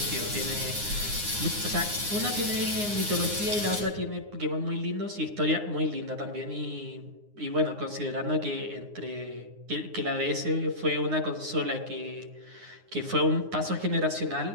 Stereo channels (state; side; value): late; left; 9.7 ms